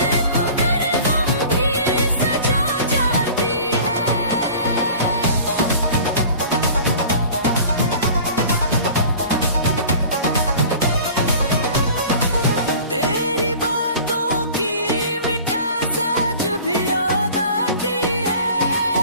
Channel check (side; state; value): both; inverted; correlation -0.43